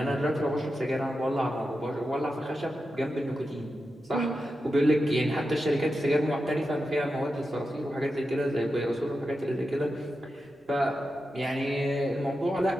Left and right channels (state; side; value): normal; both; correlation 0.90